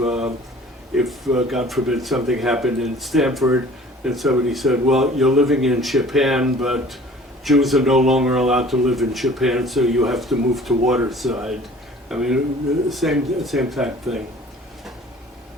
God forbid something happened in Stamford and somebody said, "Well, you're living in Japan, but Jews are no longer allowed to live in Japan, so you have to move to Waterside." I mean, same type thing.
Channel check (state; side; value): normal; both; correlation 0.48